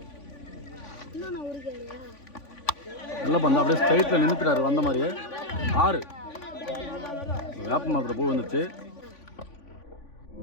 நல்ல பந்து, அப்படியே ஸ்ட்ரைட்டில் நின்றுக்கிறாரு வந்த மாதிரியே. 6 வேப்ப மரத்தில் பூ வந்துச்சு.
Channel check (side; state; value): right; late; 3.5 ms